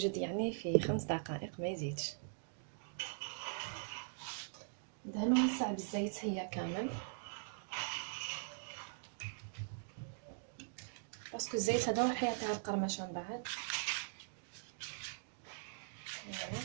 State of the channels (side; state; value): left; silent; digital silence